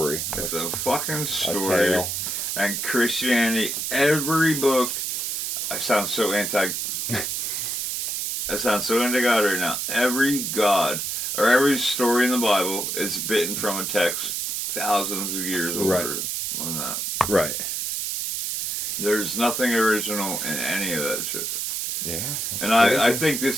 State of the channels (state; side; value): noise; right; hiss, 2 dB below the sound